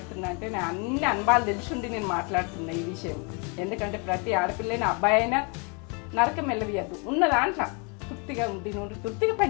అంటే నేను అన్ని అనుభవాలు తెలిసిండి నేను మాట్లాడుతున్నా ఈ విషయం. ఎందుకంటే ప్రతి ఆడపిల్లైనా అబ్బాయి అయినా నరకం వెళ్ళవియద్దు. ఉన్న దాంట్లో తృప్తిగా ఉండి నుండి తృప్తిగా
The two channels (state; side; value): quieter; right; 34.1 dB